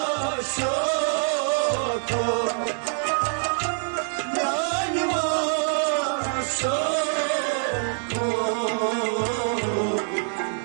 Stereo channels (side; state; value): left; silent; 62 dB below the other